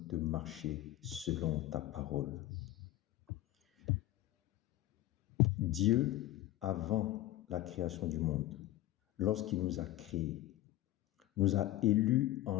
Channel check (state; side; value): quieter; right; 15.3 dB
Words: de marcher selon ta parole. Dieu, avant la création du monde, lorsqu'il nous a créés, nous a élus